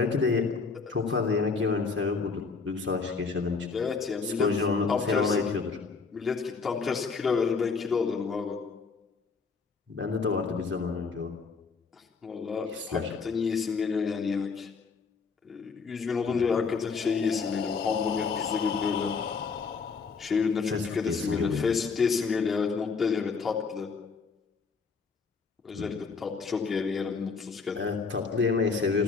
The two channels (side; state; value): right; quieter; 4.9 dB